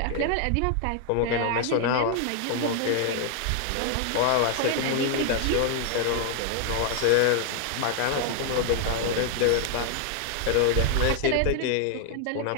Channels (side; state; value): both; different; correlation 0.00